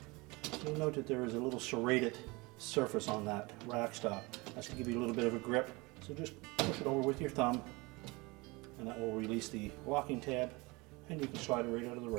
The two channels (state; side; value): quieter; left; 24.8 dB